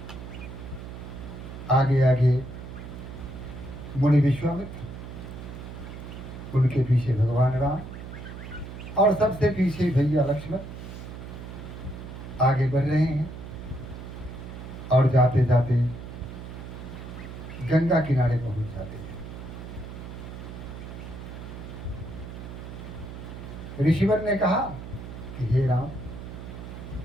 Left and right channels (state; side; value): noise; right; hum, 11 dB below the sound